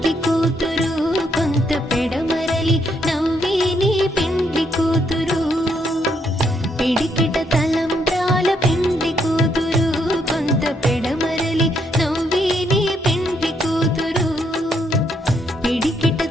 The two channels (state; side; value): normal; both; correlation 0.74